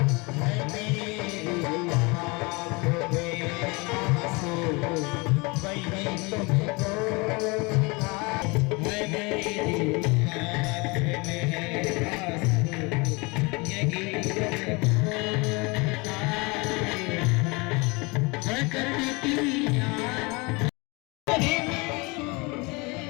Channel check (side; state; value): right; quieter; 27.3 dB